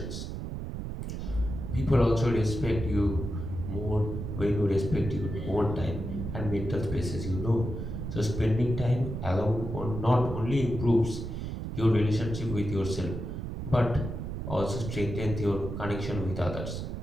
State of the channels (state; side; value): noise; right; rumble, 5 dB below the sound